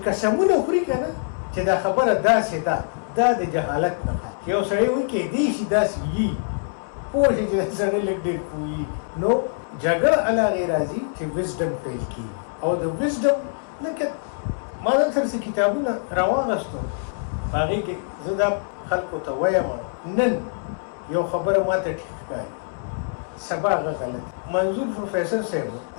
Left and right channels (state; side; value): silent; right; digital silence